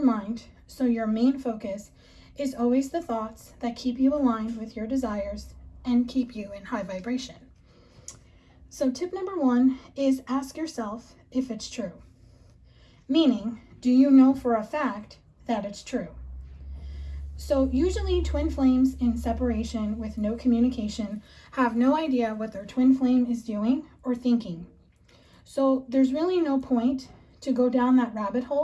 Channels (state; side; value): identical; both; correlation 1.00